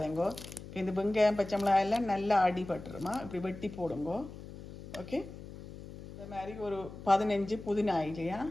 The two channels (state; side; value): noise; left; hum, 14 dB below the sound